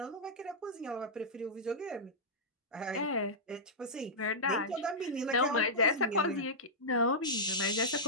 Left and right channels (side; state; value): both; normal; correlation -0.12